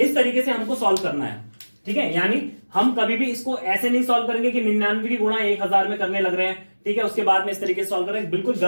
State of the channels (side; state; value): both; inverted; correlation -1.00